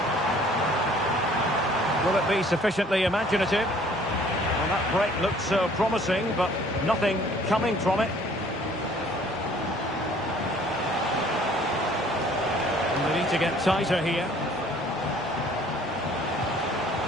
Will it be sufficiently imaginative? Well, that break looked so promising, but nothing coming from it. And they need to get tighter here.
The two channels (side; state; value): both; normal; correlation 0.56